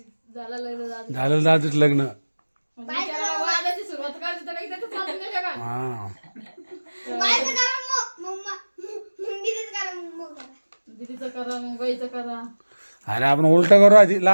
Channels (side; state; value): both; inverted; correlation -1.00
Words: झालं लग्न झालं. झालं दादूच लग्न बिचारा वादाची सुरुवात करायची तर काही त्याचं चालून गेलं का? हा दीदीचं करा मग बाईचं करा. अरे आपण उलट करू आधी